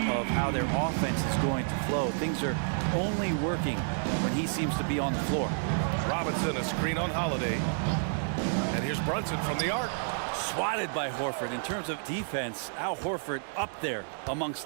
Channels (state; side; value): silent; left; digital silence